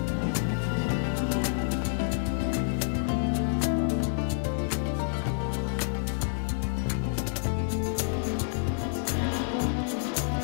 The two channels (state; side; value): silent; right; digital silence